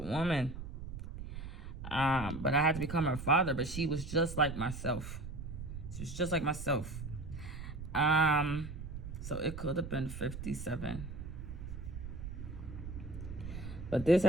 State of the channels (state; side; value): noise; right; rumble, 8 dB below the sound